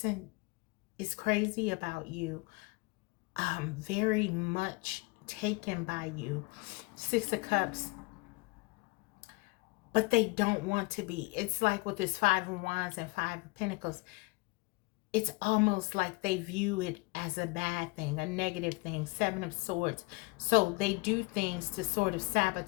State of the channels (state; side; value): quieter; right; 26.5 dB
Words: is crazy about you, very much taken by you. Six of Cups, but they don't want to be. It's like with this Five of Wands and Five of Pentacles, it's almost like they view it as a bad thing, a negative thing. Seven of Swords. So they do things to sort of